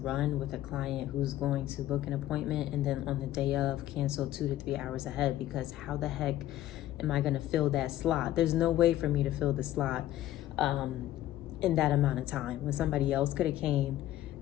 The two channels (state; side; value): quieter; right; 13.8 dB